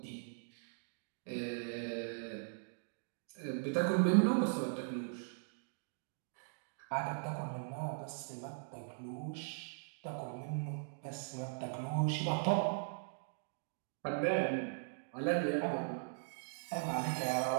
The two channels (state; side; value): silent; left; digital silence